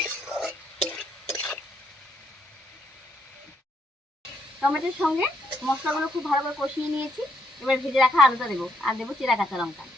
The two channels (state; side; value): normal; both; correlation 0.74